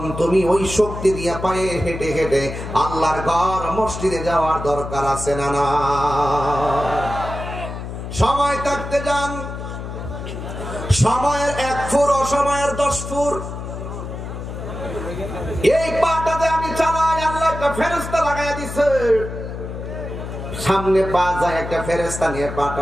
তুমি ওই শক্তি দিয়ে পায়ে হেঁটে হেঁটে আল্লাহর ঘর মসজিদে যাওয়ার দরকার আছে না? না, সময় থাকতে যান। সময়ের 1 ফুট, অসময়ের 10 ফুট। এই পাটাতে আমি চালাই, আল্লাহ একটা ফেরেশতা লাগাইয়া দিছে। সামনে পা যায়, একটা ফেরেশতা নিয়ে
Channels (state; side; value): noise; left; hum, 8 dB below the sound